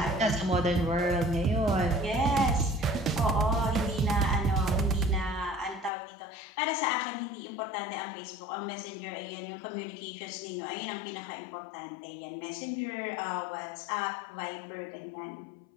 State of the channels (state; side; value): drops out; right; at 5.9 s